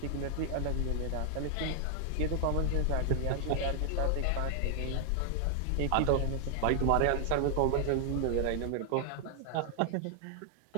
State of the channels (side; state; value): both; different; correlation 0.00